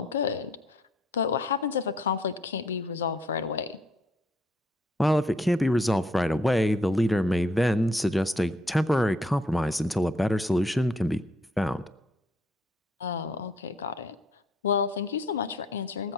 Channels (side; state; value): both; normal; correlation 0.67